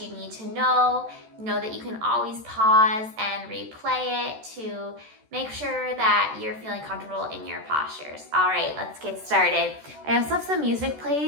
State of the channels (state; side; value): late; left; 14 ms